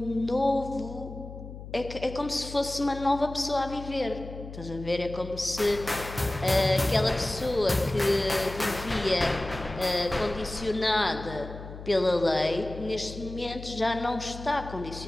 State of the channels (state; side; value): noise; left; hum, 12 dB below the sound